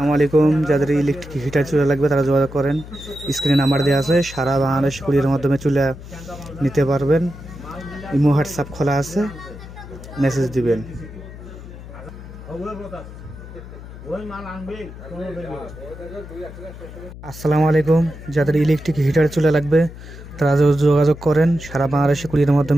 আলাইকুম। যাদের ইলেকট্রিক হিটার চুলা লাগবে তারা যোগাযোগ করেন। স্ক্রিনে নাম্বার দেওয়া আছে, সারা বাংলাদেশ কুরিয়ারের মাধ্যমে চুলা নিতে পারবেন। ইমো হোয়াটসঅ্যাপ খোলা আছে, মেসেজ দিবেন। আসসালামু আলাইকুম। যাদের ইলেকট্রিক হিটার চুলা লাগবে তারা যোগাযোগ করেন। সারা বাংলাদেশে কুরিয়ারের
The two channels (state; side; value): noise; left; hum, 14 dB below the sound